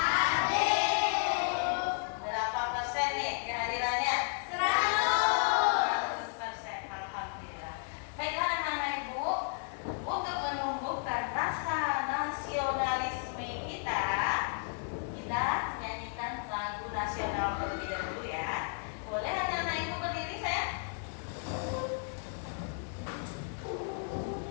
Berapa persen nih kehadirannya? 100%. Alhamdulillah. Baiklah anak-anak Ibu, untuk menumbuhkan rasa nasionalisme kita nyanyikan lagu nasional terlebih dahulu ya. Boleh anak-anak Ibu berdiri saya?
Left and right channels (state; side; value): silent; right; 56 dB below the other